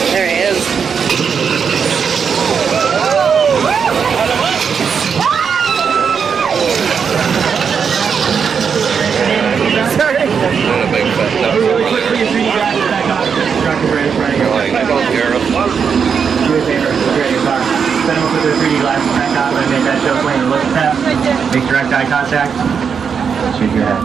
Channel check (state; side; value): quieter; left; 6.5 dB